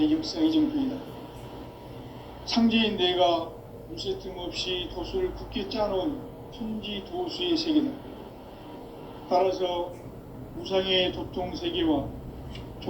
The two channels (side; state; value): both; identical; correlation 1.00